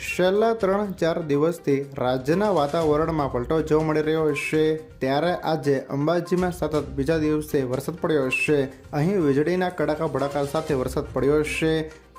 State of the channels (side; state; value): both; identical; correlation 1.00